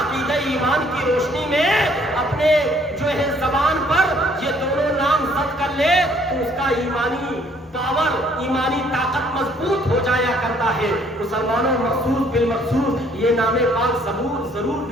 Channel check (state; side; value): normal; both; correlation 0.62